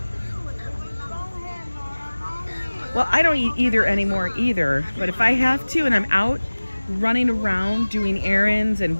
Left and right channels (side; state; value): both; inverted; correlation -1.00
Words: Well, I don't eat either anymore either, but if I have to and I'm out running around doing errands and